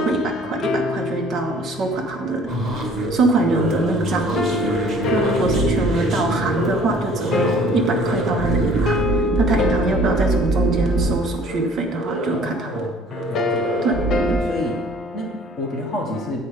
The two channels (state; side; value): normal; both; correlation 0.53